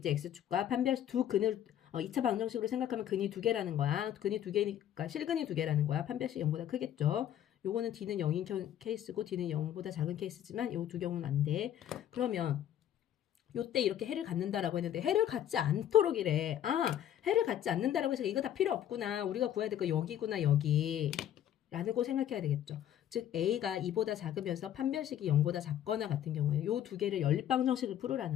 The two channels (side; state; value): right; quieter; 10.8 dB